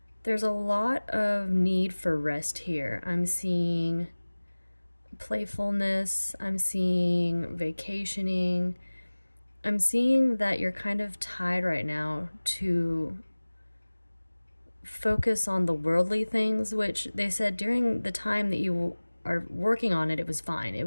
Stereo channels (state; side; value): inverted; both; correlation -1.00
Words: There's a lot of need for rest here. I'm seeing playfulness, I'm seeing vacationing. I'm seeing that you're kind of tied right now to focus on the worldly things, which they said during the time that you are working on it, it was fine, it